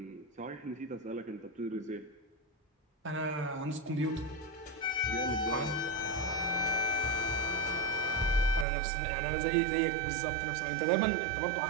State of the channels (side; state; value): left; drops out; at 8.7 s